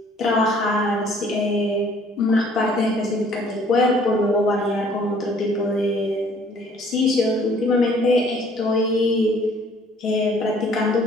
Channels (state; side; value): normal; both; correlation 0.58